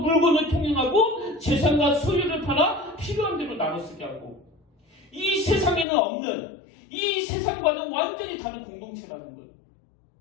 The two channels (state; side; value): drops out; right; at 5.9 s